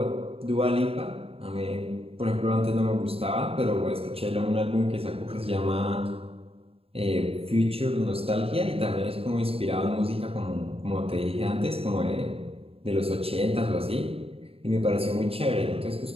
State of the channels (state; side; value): late; left; 0.28 ms